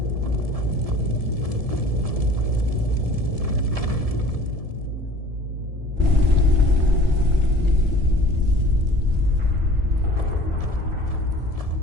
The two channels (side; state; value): left; late; 1.7 ms